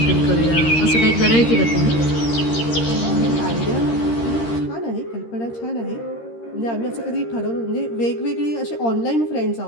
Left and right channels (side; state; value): right; late; 13 ms